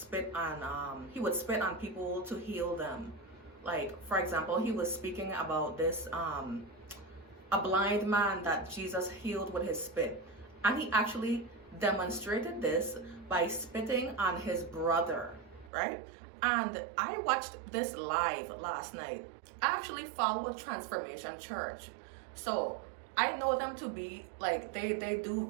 on, he would spit on people to heal them. Like, for example, he was speaking about this, a blind man that Jesus healed with his spit. And he actually demonstrated this by spitting on his brother, right? And I watched this live last night. I actually follow Transformation Church. So I know them to be like, they do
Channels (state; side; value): drops out; left; at 15.7 s